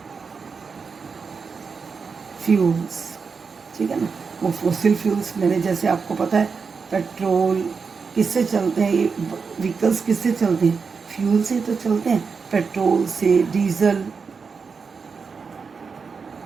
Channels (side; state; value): left; quieter; 5.3 dB